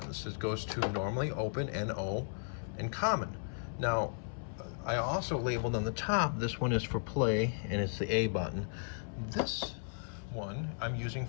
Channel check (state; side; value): silent; right; 54 dB below the other